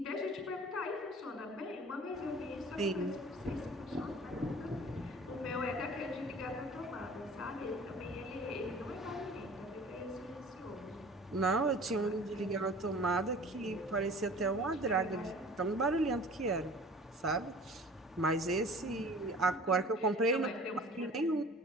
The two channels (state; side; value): normal; both; correlation 0.45